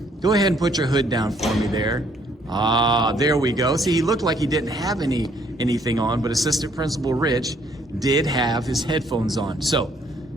go ahead and put your hood down for me there. Ah, there we go. See, he looked like he didn't have anything on, but Assistant Principal Rich did have his headphones on. So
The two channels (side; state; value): both; normal; correlation 0.65